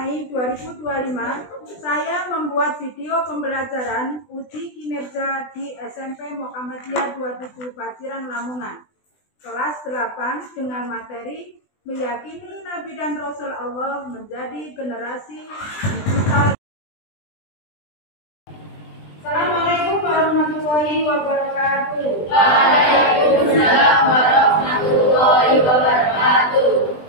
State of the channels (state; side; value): late; right; 20 ms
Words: 2025, saya membuat video pembelajaran uji kinerja di SMP Muhammadiyah 27 Paciran, Lamongan, kelas 8 dengan materi meyakini Nabi dan Rasul Allah menjadi generasi digital. Assalamualaikum warahmatullahi wabarakatuh. Waalaikumsalam warahmatullahi wabarakatuh.